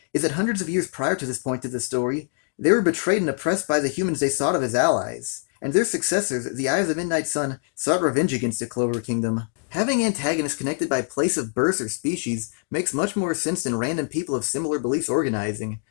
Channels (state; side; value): silent; right; digital silence